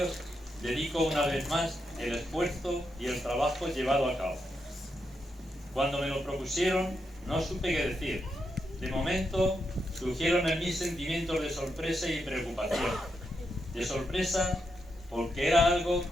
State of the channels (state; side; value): normal; both; correlation 0.83